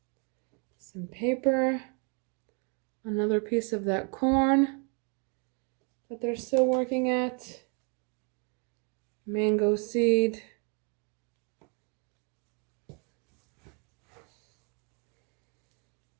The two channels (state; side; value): quieter; left; 35.9 dB